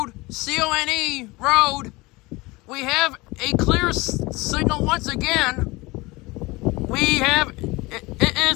C-O-N-E Road. We have a clear signal once again. We have it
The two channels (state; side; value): quieter; right; 22.6 dB